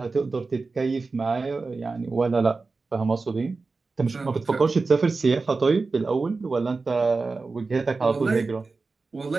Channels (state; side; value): quieter; left; 4.0 dB